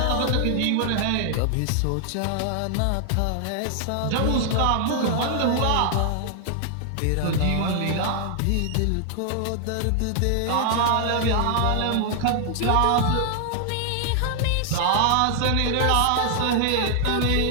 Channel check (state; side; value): different; both; correlation 0.00